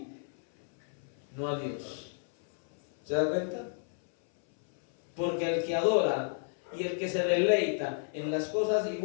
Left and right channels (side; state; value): right; silent; 57 dB below the other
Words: no a Dios. ¿Se da cuenta? Porque el que adora y el que se deleita en las cosas y